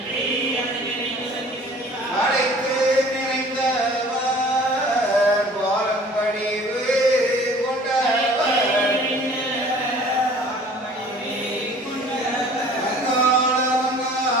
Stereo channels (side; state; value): both; normal; correlation 0.49